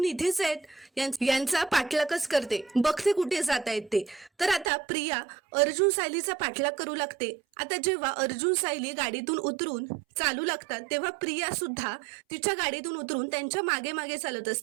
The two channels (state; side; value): drops out; left; at 4.7 s